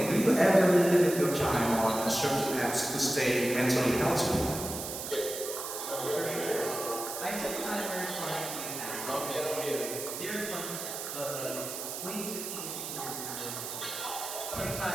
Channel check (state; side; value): noise; right; hiss, 6 dB below the sound